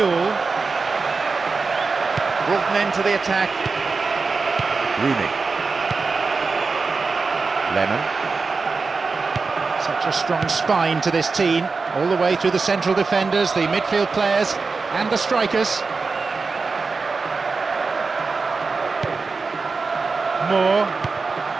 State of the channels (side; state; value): left; quieter; 4.4 dB